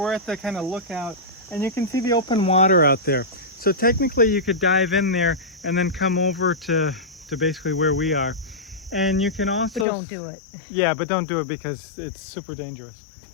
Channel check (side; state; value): right; drops out; at 9.9 s